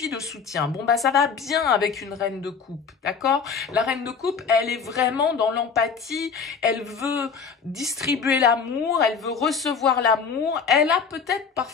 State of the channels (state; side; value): quieter; right; 5.8 dB